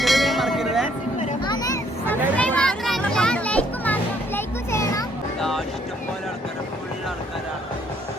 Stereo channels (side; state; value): both; normal; correlation 0.66